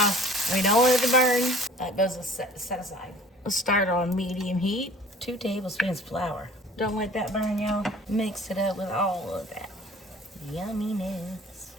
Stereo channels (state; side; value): normal; both; correlation 0.48